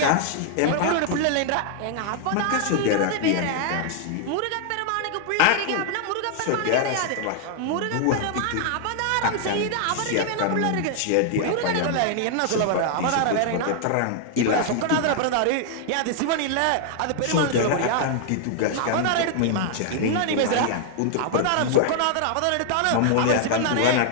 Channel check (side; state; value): both; different; correlation -0.01